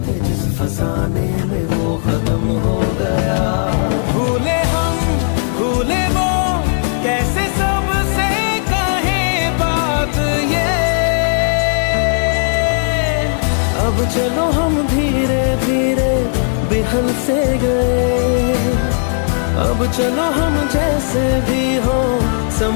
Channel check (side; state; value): right; silent; digital silence